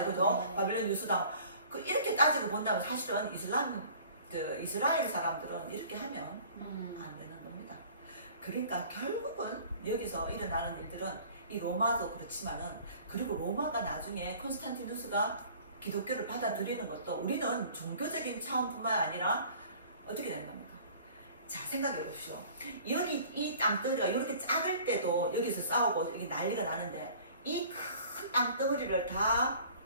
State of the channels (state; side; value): inverted; both; correlation -0.49